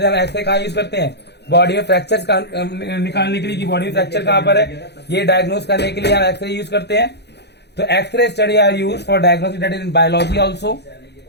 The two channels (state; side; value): late; right; 0.49 ms